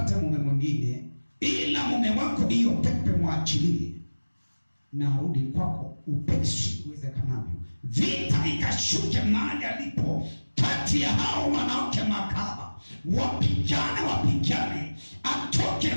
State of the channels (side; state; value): both; inverted; correlation -1.00